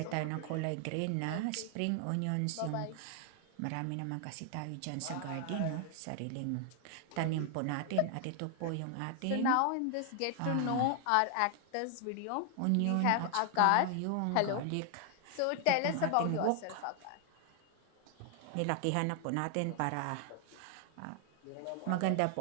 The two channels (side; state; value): both; different; correlation 0.00